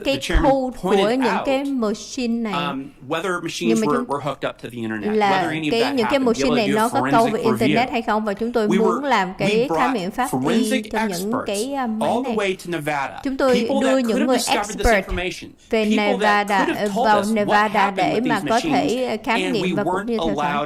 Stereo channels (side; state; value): both; identical; correlation 1.00